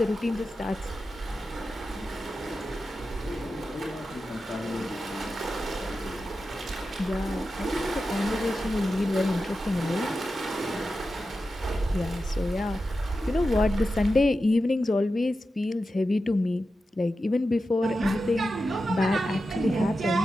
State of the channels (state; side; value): normal; both; correlation 0.91